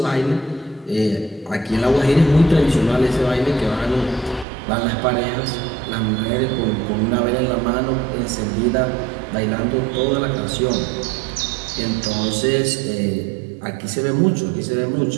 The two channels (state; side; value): drops out; left; at 4.5 s